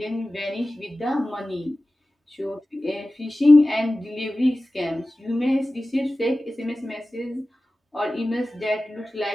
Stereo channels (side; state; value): both; normal; correlation 0.96